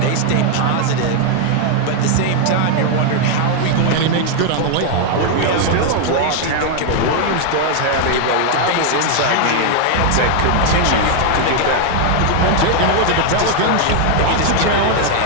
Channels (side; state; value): both; different; correlation 0.00